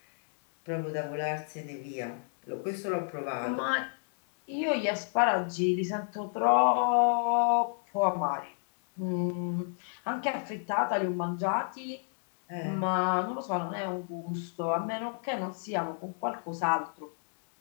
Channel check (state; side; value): silent; right; digital silence